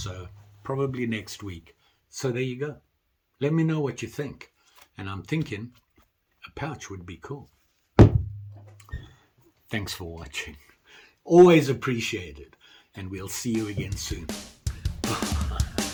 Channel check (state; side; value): identical; both; correlation 1.00